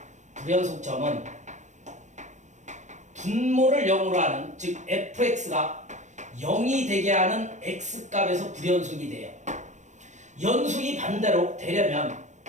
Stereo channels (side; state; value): left; late; 0.35 ms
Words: 분모를 0으로 하는 즉 fx가 0이 되게 하는 x값에서 불연속이 돼요. 연속이 반대로 되려면